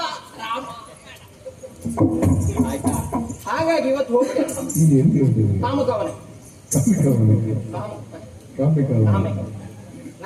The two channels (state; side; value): identical; both; correlation 1.00